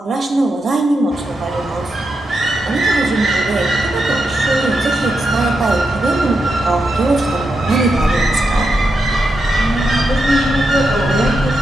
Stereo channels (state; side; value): normal; both; correlation 0.85